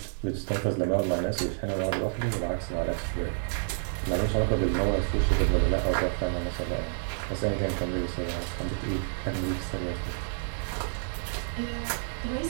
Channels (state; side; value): silent; left; 58 dB below the other